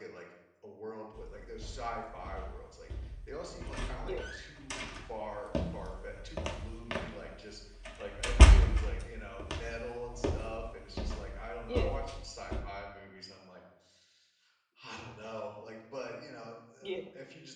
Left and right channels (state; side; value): identical; both; correlation 1.00